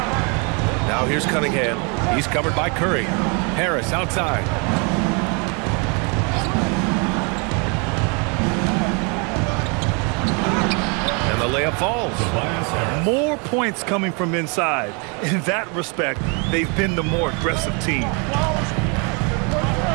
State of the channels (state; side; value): quieter; left; 33.6 dB